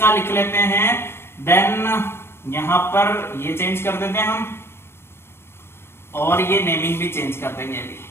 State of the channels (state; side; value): late; right; 0.12 ms